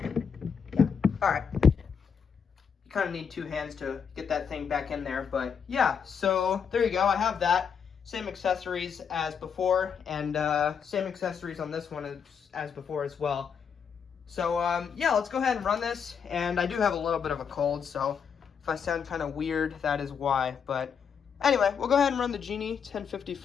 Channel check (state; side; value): quieter; right; 6.8 dB